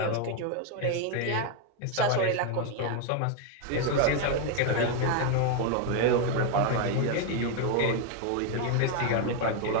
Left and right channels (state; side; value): different; both; correlation 0.01